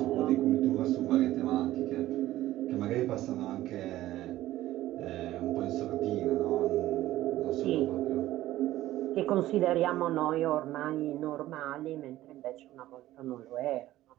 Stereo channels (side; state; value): left; quieter; 15.1 dB